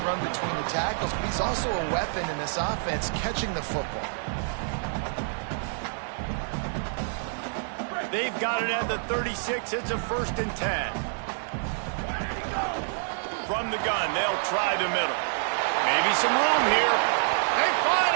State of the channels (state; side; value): silent; left; 60 dB below the other